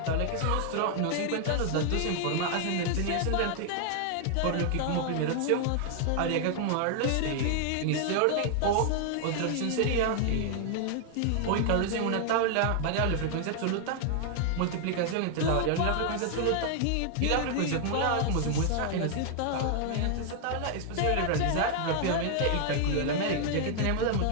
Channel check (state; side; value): different; both; correlation 0.00